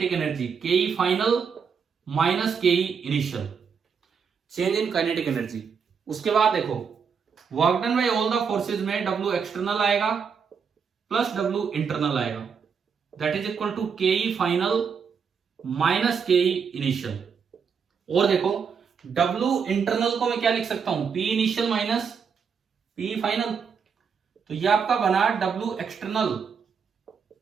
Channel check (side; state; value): left; quieter; 6.3 dB